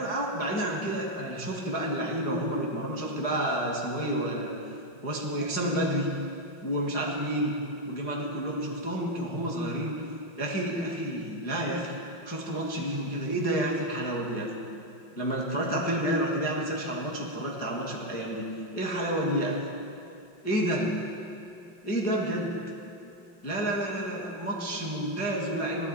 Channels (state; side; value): late; right; 5.6 ms